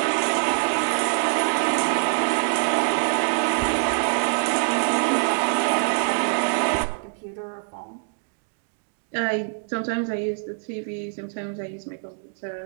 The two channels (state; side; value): silent; left; digital silence